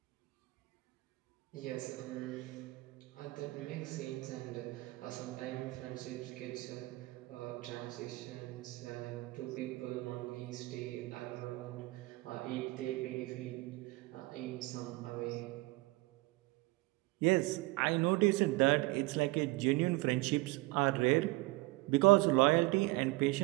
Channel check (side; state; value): left; quieter; 22.3 dB